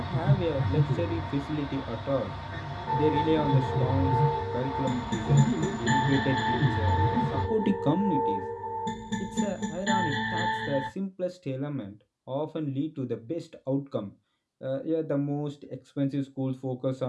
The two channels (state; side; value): identical; both; correlation 1.00